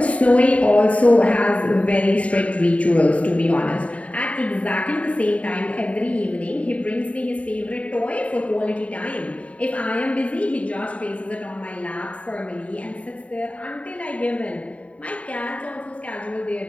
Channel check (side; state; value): right; late; 0.066 ms